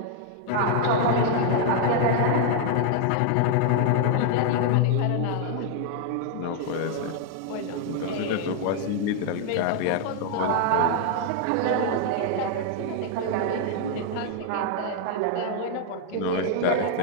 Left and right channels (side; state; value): both; different; correlation 0.00